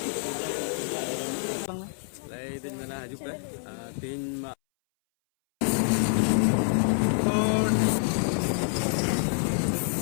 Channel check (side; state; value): right; silent; 60 dB below the other